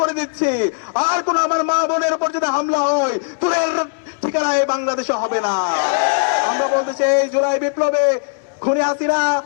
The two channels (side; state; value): right; silent; digital silence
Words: করে দিচ্ছি, আর কোন আমার মা বোনের উপর যদি হামলা হয় তোদের ঠিকানায় বাংলাদেশে হবে না। আমরা বলতে চাই, জুলাই বিপ্লবে খুনি হাসিনা,